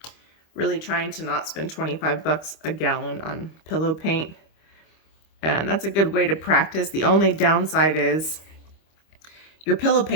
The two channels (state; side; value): late; right; 25 ms